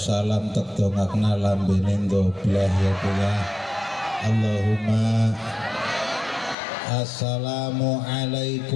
salam tek dongakna lambene ndobleh ya punya Allahumma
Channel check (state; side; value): drops out; right; at 6.6 s